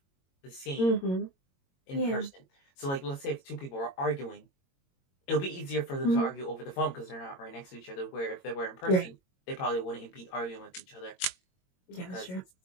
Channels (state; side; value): late; right; 22 ms